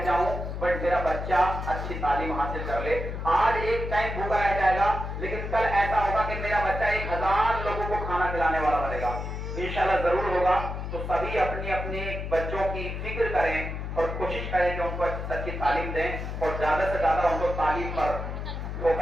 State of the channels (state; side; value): noise; left; hum, 5 dB below the sound